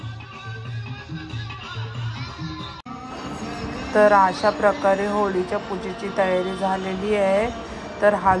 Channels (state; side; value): identical; both; correlation 1.00